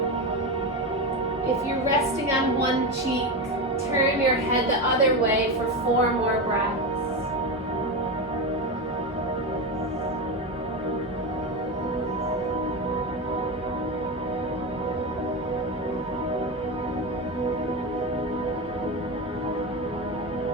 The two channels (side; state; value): both; normal; correlation 0.17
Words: If you're resting on one cheek, turn your head the other way for 4 more breaths.